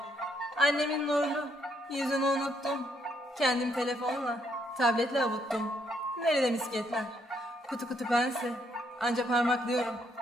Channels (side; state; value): both; normal; correlation 0.73